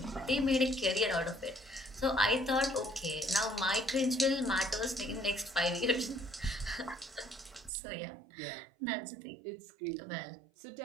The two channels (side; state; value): left; drops out; at 7.7 s